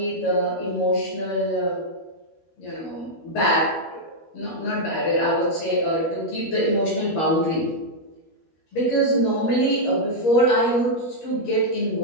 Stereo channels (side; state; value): right; late; 13 ms